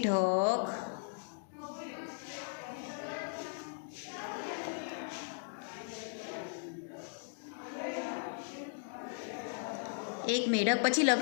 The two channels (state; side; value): silent; right; digital silence